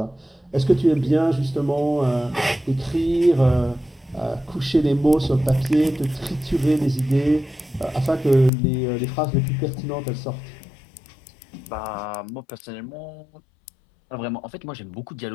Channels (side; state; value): right; drops out; at 8.5 s